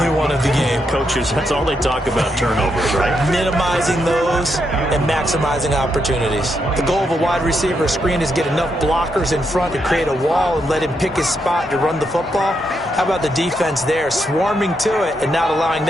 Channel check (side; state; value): both; normal; correlation 0.80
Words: one of the game. Coaches, that's all they talk about, turnovers, right? Minimizing those and maximizing opportunities. The goal of a wide receiver screen is get enough blockers in front to create a wall and let him pick his spot to run the football. How about the defense there, swarming to it and not allowing